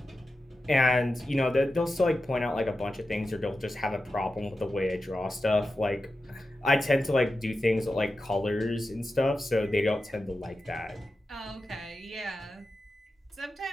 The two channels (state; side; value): normal; both; correlation 0.91